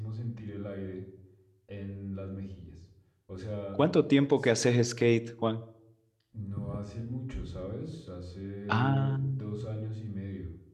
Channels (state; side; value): identical; both; correlation 1.00